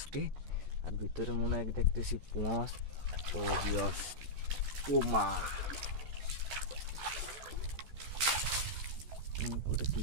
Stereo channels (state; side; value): late; left; 14 ms